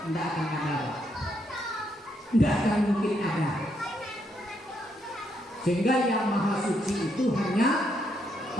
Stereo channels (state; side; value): normal; both; correlation 0.76